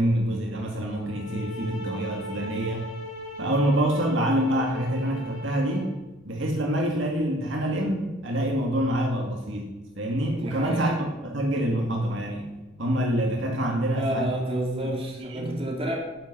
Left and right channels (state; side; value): noise; left; rumble, 30 dB below the sound